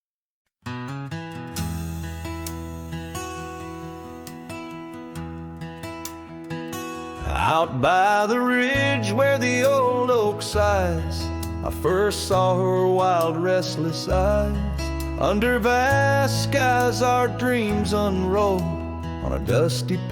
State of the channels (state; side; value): identical; both; correlation 1.00